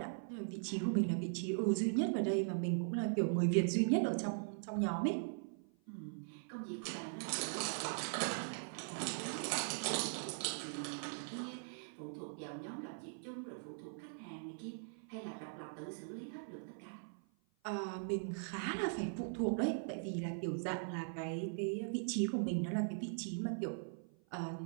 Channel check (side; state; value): left; silent; 51 dB below the other